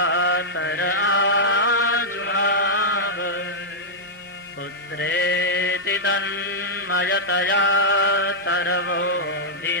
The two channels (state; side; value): normal; both; correlation -0.07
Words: आजुहाव पुत्रेति तन्मयतया